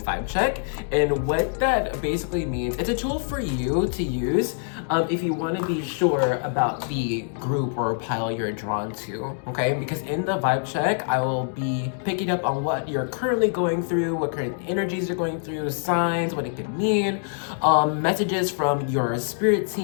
check. And what that basically means, it's a tool for you to use if you wanna be sure about the group or pile you're drawn to, okay? Because in the vibe check, I will be picking up on what you're currently going through, what current energies you're going through, signs, what it could mean, messages from your spirit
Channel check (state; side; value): silent; right; digital silence